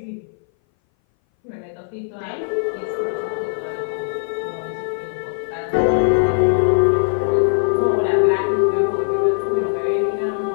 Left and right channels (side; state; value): right; silent; 60 dB below the other